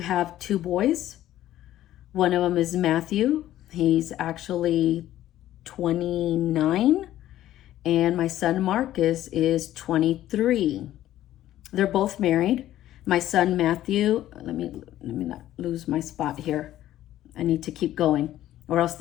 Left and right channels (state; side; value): quieter; right; 13.3 dB